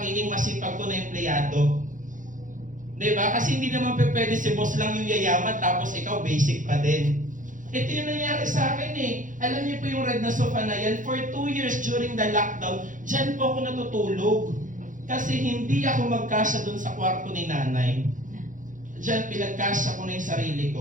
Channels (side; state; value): left; late; 0.38 ms